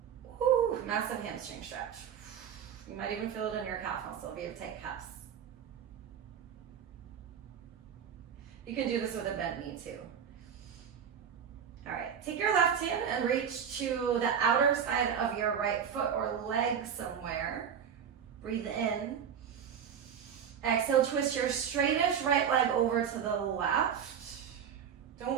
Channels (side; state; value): left; quieter; 7.9 dB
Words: Woo, massive hamstring stretch. You might even feel it in your calf muscle if you have tight calves. You can do this with a bent knee too. All right, take your left hand and reach to the outer side of your right foot or leg somewhere. Breathe in. Exhale, twist your straightest right leg over to the left.